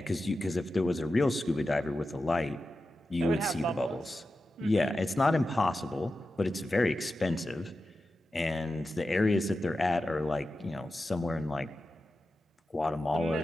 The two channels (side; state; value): both; normal; correlation 0.92